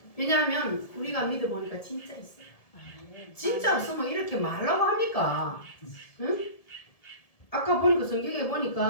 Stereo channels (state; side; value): late; right; 1.7 ms